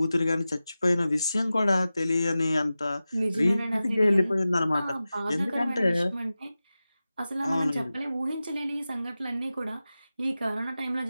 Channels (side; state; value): both; inverted; correlation -0.95